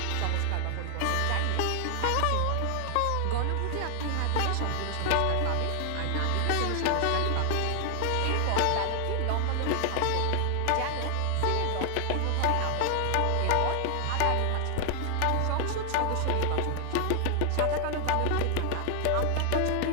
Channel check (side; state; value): both; different; correlation 0.00